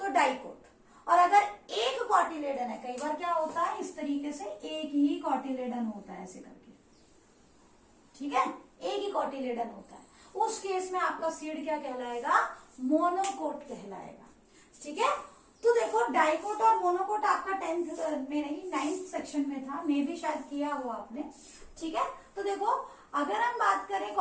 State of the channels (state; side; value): identical; both; correlation 1.00